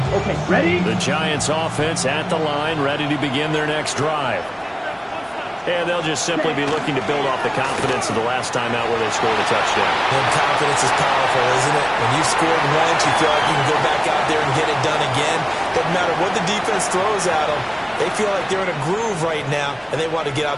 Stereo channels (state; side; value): identical; both; correlation 1.00